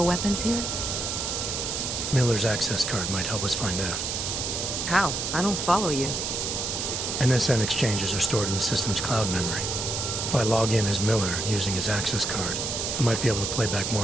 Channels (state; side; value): noise; right; hiss, 2 dB below the sound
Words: here? Miller's access card might help us find out. How? I don't follow you. NSN exchanges are stored in the system's cloud memory. If I log in as Miller using his access card, I might be able to play back